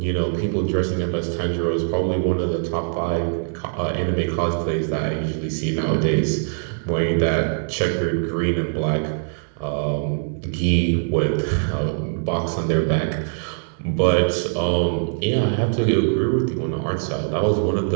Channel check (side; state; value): left; silent; 62 dB below the other